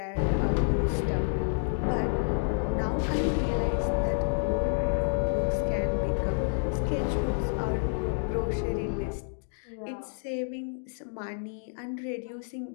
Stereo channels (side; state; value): right; silent; digital silence